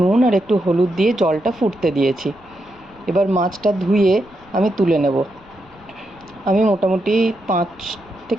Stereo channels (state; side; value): noise; left; rumble, 28 dB below the sound